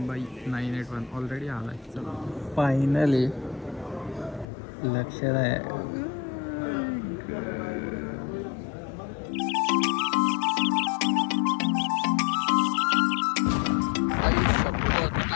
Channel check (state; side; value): drops out; right; at 4.5 s